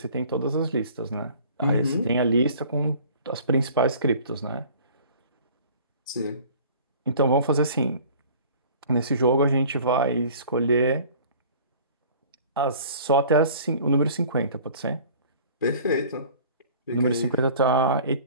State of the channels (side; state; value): both; inverted; correlation -0.48